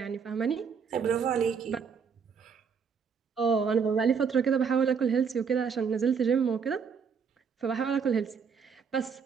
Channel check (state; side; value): quieter; left; 6.3 dB